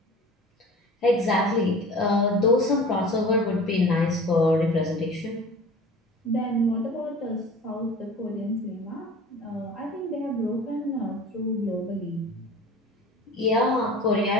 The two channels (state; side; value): normal; both; correlation 0.40